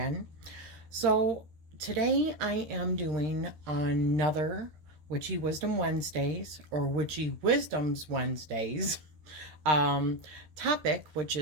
So today I am doing another Witchy Wisdom Wednesdays, or Witchy Wisdoms Wednesdays topic, which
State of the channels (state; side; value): late; left; 13 ms